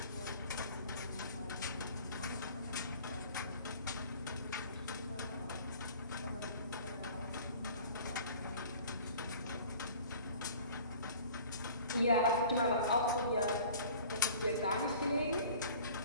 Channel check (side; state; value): both; inverted; correlation -0.47